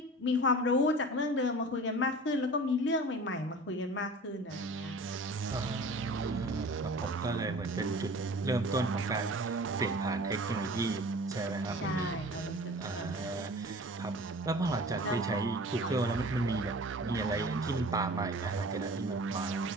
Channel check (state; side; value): normal; both; correlation 0.41